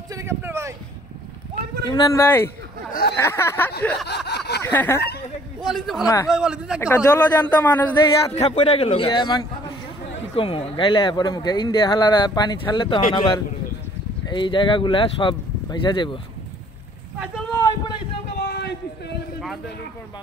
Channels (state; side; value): normal; both; correlation 0.58